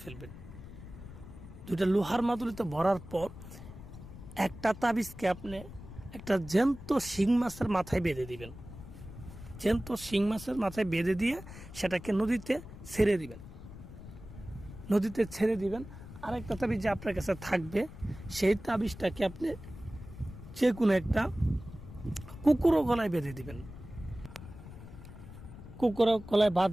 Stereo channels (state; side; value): noise; left; rumble, 14 dB below the sound